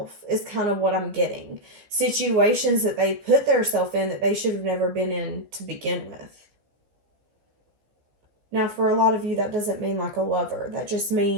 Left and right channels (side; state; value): left; late; 15 ms